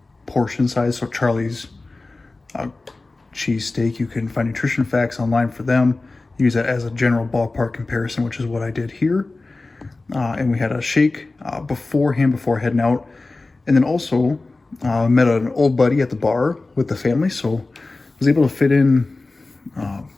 portion size. So Charlie's cheesesteak, you can find nutrition facts online for them. Use that as a general ballpark comparison, which is what I did here. And we had a shake beforehand before heading out. And then also met an old buddy at the bar with the family. So was able to fit in kind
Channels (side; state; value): right; quieter; 3.3 dB